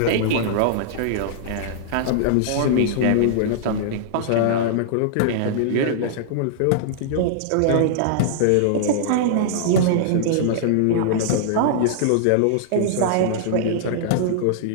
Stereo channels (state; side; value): different; both; correlation -0.01